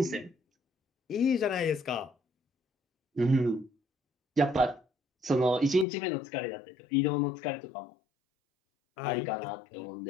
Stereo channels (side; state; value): right; drops out; at 5.9 s